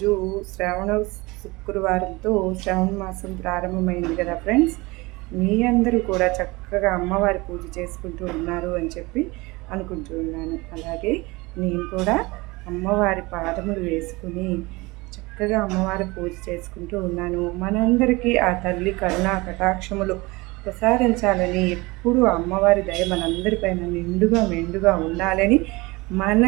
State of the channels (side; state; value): left; quieter; 23.2 dB